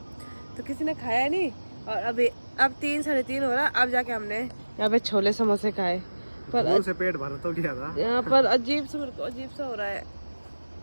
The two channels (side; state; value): both; inverted; correlation -1.00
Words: तो किसी ने खाया नहीं। और अभी अब 3-3:30 हो रहा, अब जाके हमने यहाँ पे छोले समोसे खाए। पर से पेट भर तो गया था यहाँ पर अजीब सा, मेरे को अजीब सा हो रहा है,